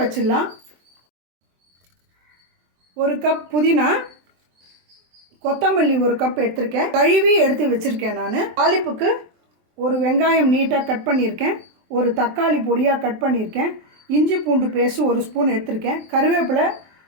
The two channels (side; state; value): left; late; 23 ms